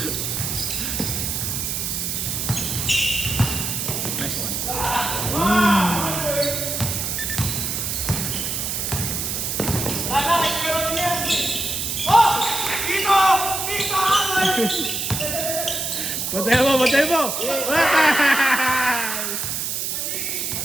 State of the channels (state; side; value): noise; right; hiss, 2 dB below the sound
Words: Nice one. Batay mo!